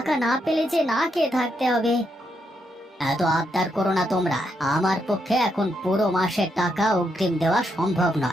না পেলে যে না খেয়ে থাকতে হবে। এত আবদার করো না তোমরা, আমার পক্ষে এখন পুরো মাসের টাকা অগ্রিম দেওয়া সম্ভব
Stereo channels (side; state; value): both; normal; correlation 0.80